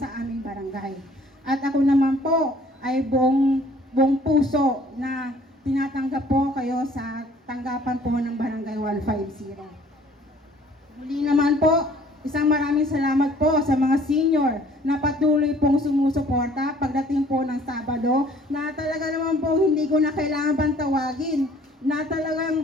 aming barangay. At ako naman po ay buong puso na tinatanggap po kayo sa tanggapan po ng Barangay 150. Muli naman po, isang maraming salamat po sa mga senior na patuloy pong sumusuporta pagdating po ng Sabado na talaga naman po hindi ko na kailangan bang tawagin na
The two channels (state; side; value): normal; both; correlation 0.56